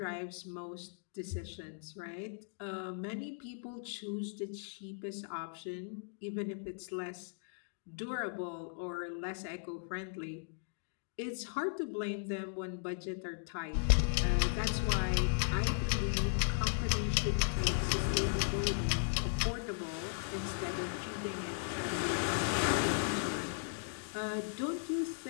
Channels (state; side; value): silent; right; digital silence